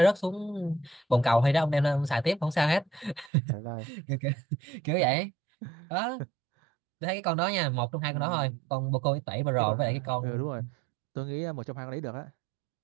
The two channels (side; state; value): left; drops out; at 3.3 s